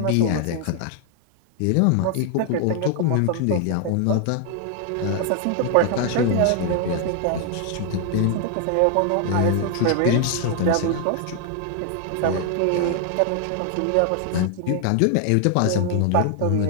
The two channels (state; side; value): different; both; correlation 0.00